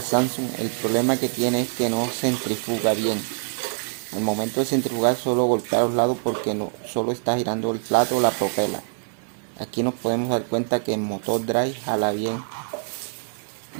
Samsung. El problema que tiene es que no centrifuga bien. En el momento de centrifugar solo golpea a los lados porque no, solo está girando el plato o la propela. Aquí nos podemos dar cuenta que el motor drive jala bien.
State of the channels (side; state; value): left; silent; 55 dB below the other